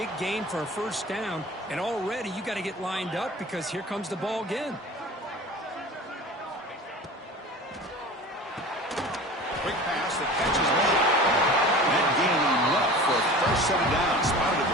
gain for a first down, and already you got to get lined up because here comes the ball again. Quick pass, the catch is made. set it down. Spotted at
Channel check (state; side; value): normal; both; correlation 0.38